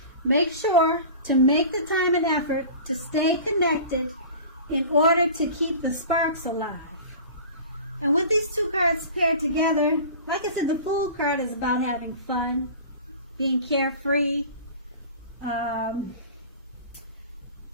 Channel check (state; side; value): inverted; both; correlation -0.39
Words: Make sure to make the time and effort to stay connected in order to keep the sparks alive. And with these two cards paired together, like I said, the Fool card is about having fun, being carefree.